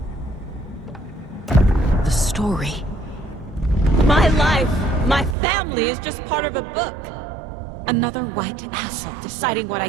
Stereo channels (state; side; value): drops out; left; at 5.4 s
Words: The story. My life, my family is just part of a book. Another white asshole deciding what I